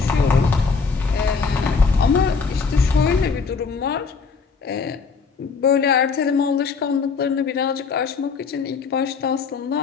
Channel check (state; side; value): quieter; right; 5.0 dB